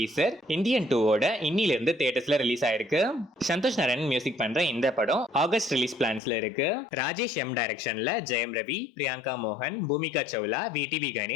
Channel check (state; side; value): drops out; right; at 6.2 s